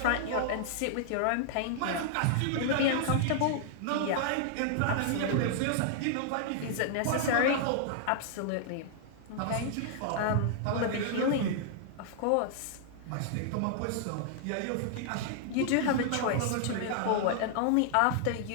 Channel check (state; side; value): different; both; correlation -0.01